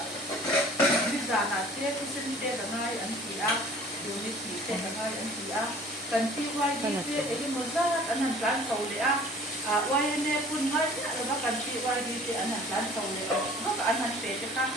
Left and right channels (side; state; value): both; normal; correlation 0.49